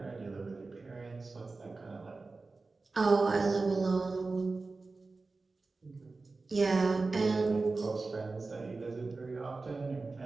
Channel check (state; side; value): quieter; left; 3.8 dB